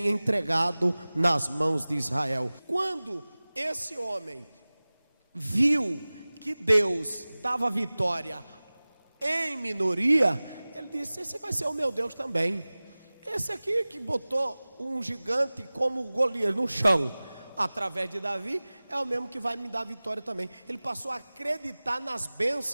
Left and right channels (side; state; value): both; inverted; correlation -0.99